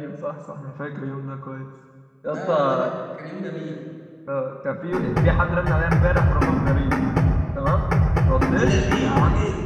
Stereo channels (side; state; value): both; identical; correlation 1.00